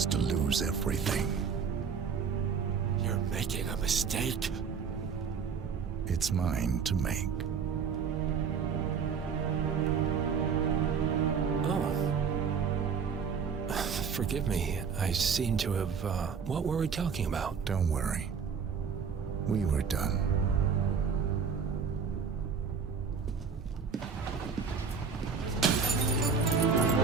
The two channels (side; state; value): left; quieter; 6.1 dB